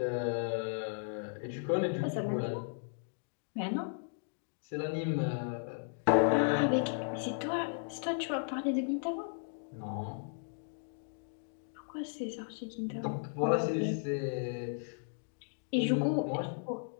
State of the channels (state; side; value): silent; right; digital silence